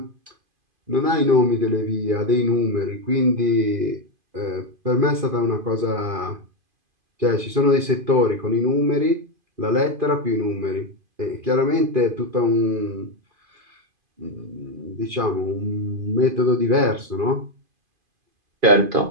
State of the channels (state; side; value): late; left; 2.5 ms